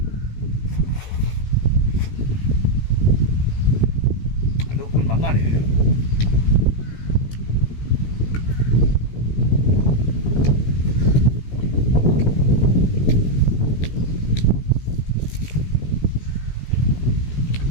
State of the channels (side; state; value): right; late; 16 ms